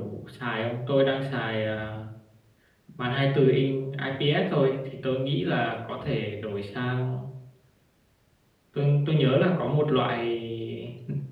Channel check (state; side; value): identical; both; correlation 1.00